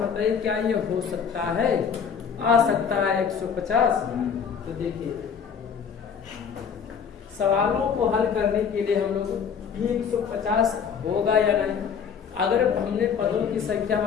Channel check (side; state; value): right; quieter; 6.9 dB